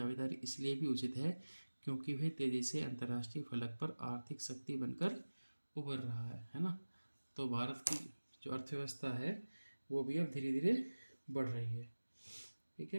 इसलिए भी उचित है क्योंकि वह तेजी से अंतर्राष्ट्रीय फलक पर आर्थिक शक्ति बनकर उभर रहा है ना। तो भारत की जो अर्थव्यवस्था है वो भी अब धीरे धीरे बढ़ रही है, ठीक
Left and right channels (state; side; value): inverted; both; correlation -1.00